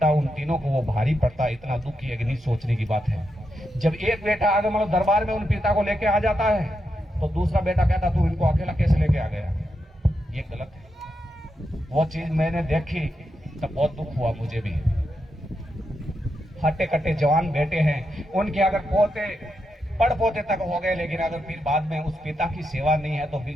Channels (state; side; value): normal; both; correlation 0.85